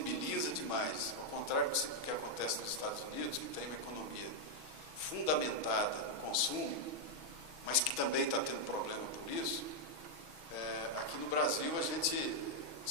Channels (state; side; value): late; left; 6.2 ms